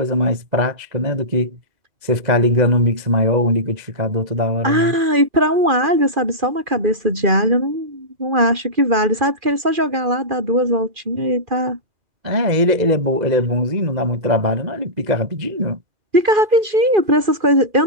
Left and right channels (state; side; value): late; left; 2.4 ms